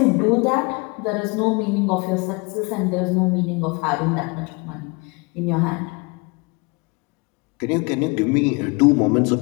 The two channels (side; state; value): right; quieter; 28.4 dB